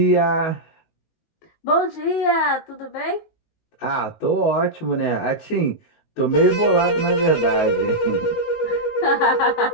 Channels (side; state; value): right; late; 19 ms